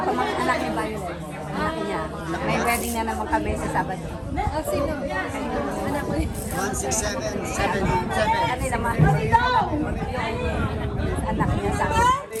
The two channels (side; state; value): both; identical; correlation 1.00